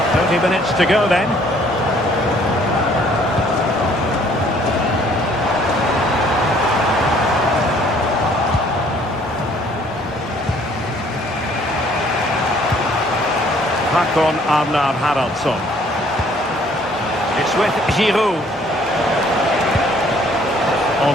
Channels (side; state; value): both; normal; correlation 0.60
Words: 20 minutes to go then. Håkon Arnar Haraldsson. It's with Giroud.